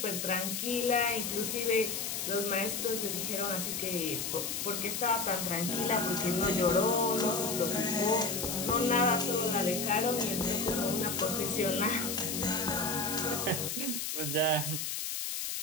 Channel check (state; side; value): noise; left; hiss, 3 dB below the sound